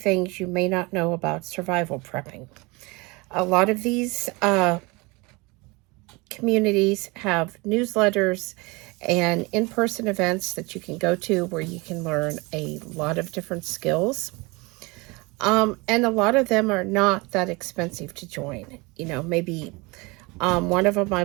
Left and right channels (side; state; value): left; quieter; 25.6 dB